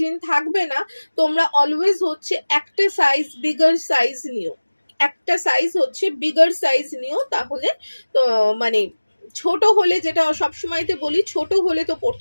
থাকবে না। তোমরা অলওয়েজ হচ্ছে একটা সাইজ বিগার সাইজ নিও, একটা সাইজ হচ্ছে বিগার সাইজ নিও, তাহলে তো মানে ছোট হলে, যেটা সবসময়তে বলি, ছোট হলে তো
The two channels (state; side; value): inverted; both; correlation -1.00